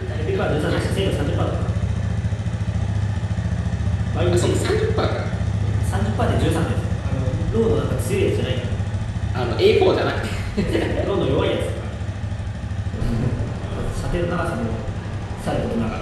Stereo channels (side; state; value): both; identical; correlation 1.00